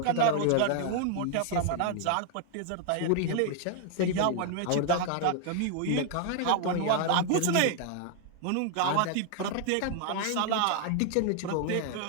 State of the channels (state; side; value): different; both; correlation 0.00